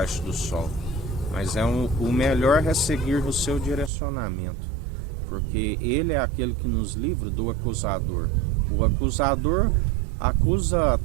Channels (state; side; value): drops out; left; at 3.9 s